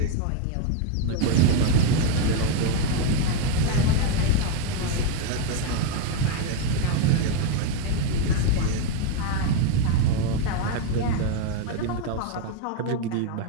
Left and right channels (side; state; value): both; different; correlation 0.02